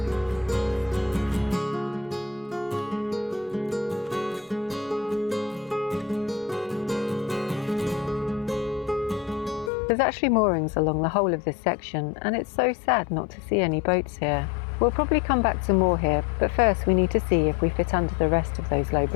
There's actually moorings along the whole of this section, and it's so sad not to see any boats here. We'll probably come back to more here, but first we need to see if we fit under the rest of those low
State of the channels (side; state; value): right; drops out; at 9.7 s